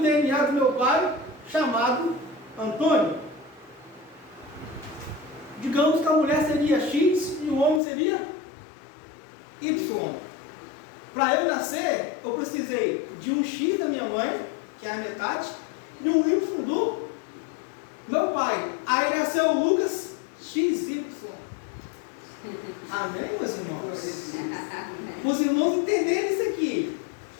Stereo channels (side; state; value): right; drops out; at 7.8 s